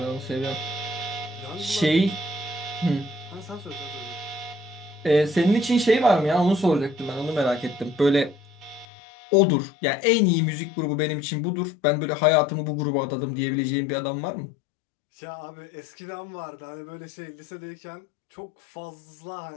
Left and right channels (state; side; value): drops out; right; at 8.8 s